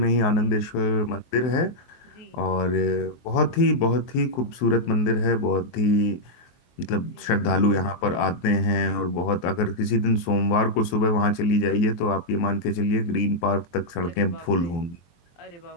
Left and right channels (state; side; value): late; right; 23 ms